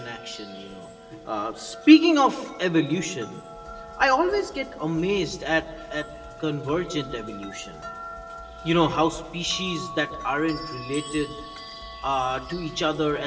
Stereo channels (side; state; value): both; identical; correlation 1.00